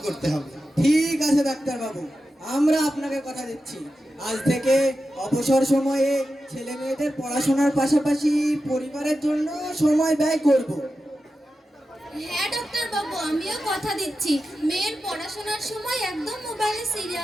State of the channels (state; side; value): normal; both; correlation 0.91